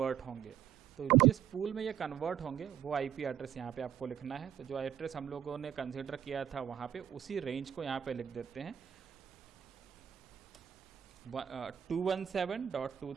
होंगे। तो जिस पूल में ये कन्वर्ट होंगे वो IP एड्रेस यहाँ पे आपको लिखना है। तो जो एड्रेस हम लोगों ने कंसिडर किया था वहाँ पे उसी रेंज को यहाँ पे लिख देते हैं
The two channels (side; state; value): left; quieter; 9.7 dB